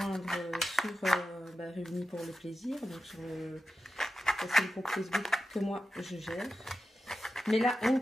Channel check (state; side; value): normal; both; correlation 0.91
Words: sur Réunis pour le plaisir, donc sur le groupe Facebook que moi je gère. Mais là, on ne